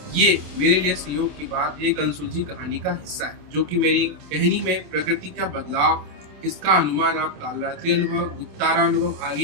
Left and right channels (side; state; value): left; late; 27 ms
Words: ये मेरे लिए संयोग की बात एक अनसुलझी कहानी का हिस्सा है, जो कि मेरी कहानी में प्रकृति का बदलाव, इसका अनुमान आप कालरात्रि अनुभव, गुप्तारा अनुभव आगे